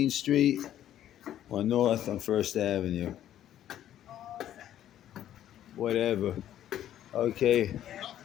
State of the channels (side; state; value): right; quieter; 11.6 dB